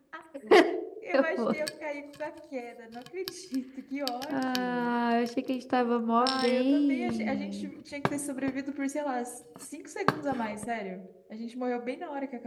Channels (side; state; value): both; identical; correlation 1.00